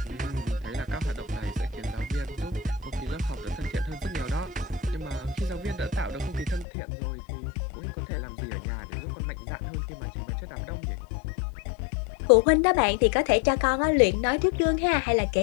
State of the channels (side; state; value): right; drops out; at 6.7 s